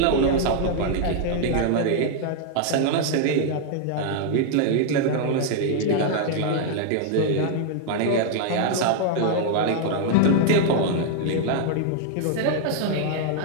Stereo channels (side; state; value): both; different; correlation 0.00